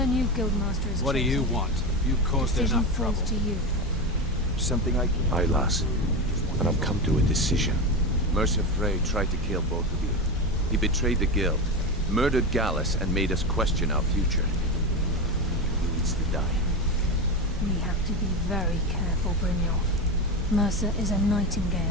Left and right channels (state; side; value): normal; both; correlation 0.18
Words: new guildmaster is What do you chosen, want? You've caused decision enough falls trouble. to you. Something I can... Aye, lass. And I've come to a decision. Mercer Frey tried to kill both of you. He betrayed the guild, murdered Gallus, and made us question our future. He needs to die. We have to be very careful, Brynjolf. Mercer is a